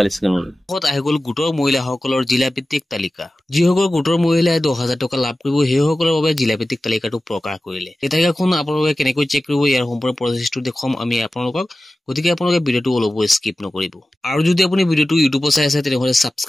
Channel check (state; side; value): normal; both; correlation 0.95